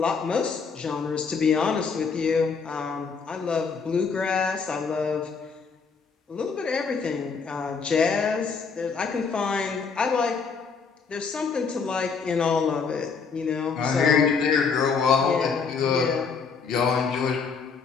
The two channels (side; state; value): right; quieter; 5.4 dB